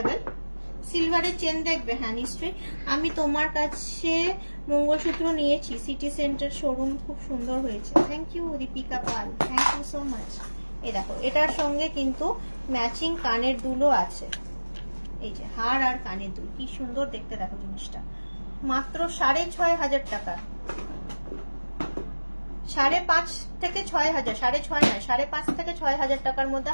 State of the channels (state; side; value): inverted; both; correlation -1.00